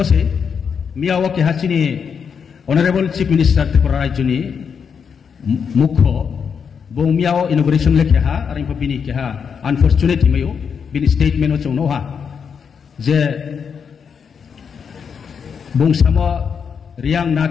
मियाओ के हाचिनी ऑनरेबल चीफ मिनिस्टर त्रिपुरा राज्यनि मुख्य बो मियाओ इनॉग्रेशन लेखे हा और इनको बिनी के हा अनफॉर्चुनेट हिमयो बिनी स्टेटमेंट चौनो हा जे बुंसामो रियांग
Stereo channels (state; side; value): quieter; right; 6.6 dB